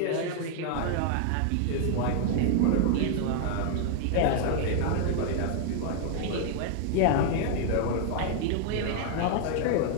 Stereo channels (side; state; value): both; different; correlation 0.00